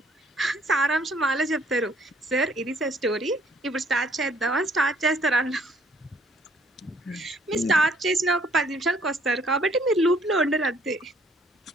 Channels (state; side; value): normal; both; correlation 0.63